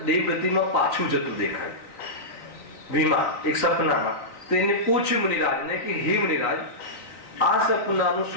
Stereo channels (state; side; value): late; right; 3.9 ms